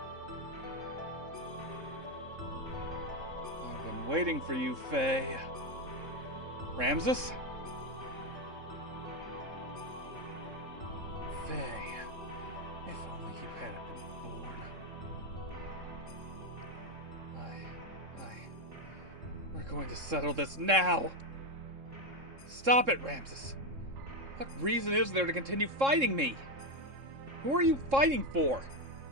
I've been waiting for you, Faye. Ramses? Faye, if only you hadn't been born. We're going to settle this now! Stop it, Ramses! What reason is there to continue fighting me? Who are you fighting for?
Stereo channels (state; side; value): late; left; 3.7 ms